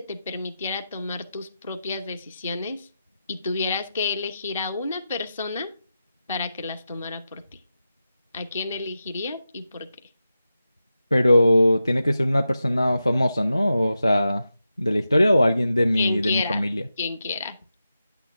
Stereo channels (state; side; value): inverted; both; correlation -0.90